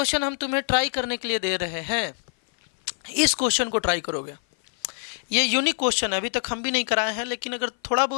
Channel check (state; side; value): silent; right; 56 dB below the other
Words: हम तुम्हें ट्राई करने के लिए दे रहे हैं, इस क्वेश्चन को ट्राई करोगे। ये यूनिक क्वेश्चन है, अभी तक हम भी नहीं कराए हैं, लेकिन अगर थोड़ा